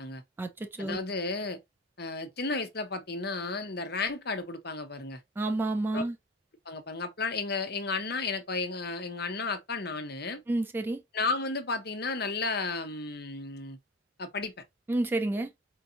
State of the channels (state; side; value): normal; both; correlation 0.31